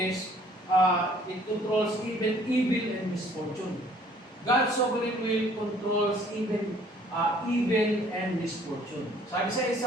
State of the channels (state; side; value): normal; both; correlation 0.58